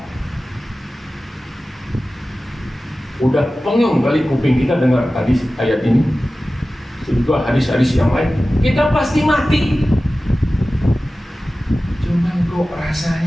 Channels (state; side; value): normal; both; correlation 0.96